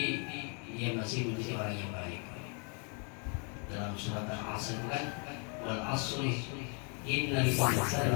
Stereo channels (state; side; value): quieter; right; 37.9 dB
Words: dia masih menjadi orang yang baik. Dalam surat Al-Asr kan, wal asri innal